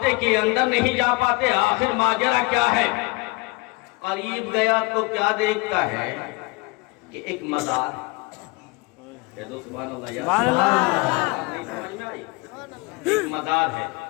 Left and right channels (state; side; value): quieter; right; 25.8 dB